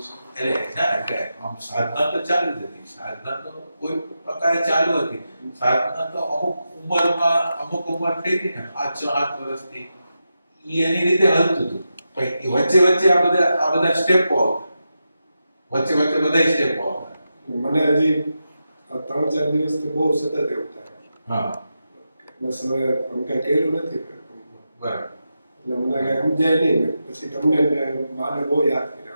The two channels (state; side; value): inverted; both; correlation -0.89